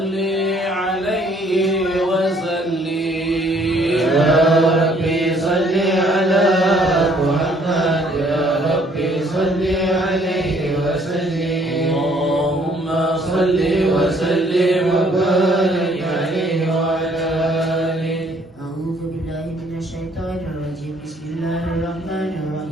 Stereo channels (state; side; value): normal; both; correlation 0.63